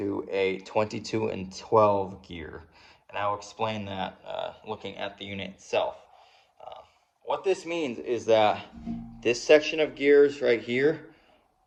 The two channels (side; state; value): both; identical; correlation 1.00